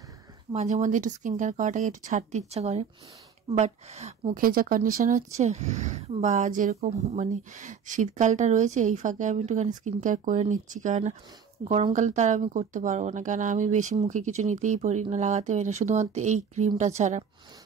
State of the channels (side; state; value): left; quieter; 6.8 dB